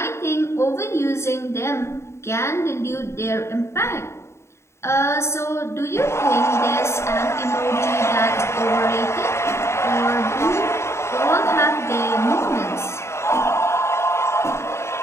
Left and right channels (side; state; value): right; late; 0.13 ms